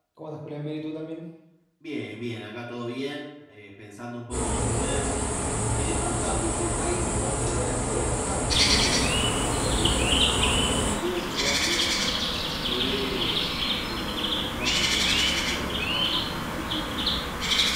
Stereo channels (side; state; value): both; identical; correlation 1.00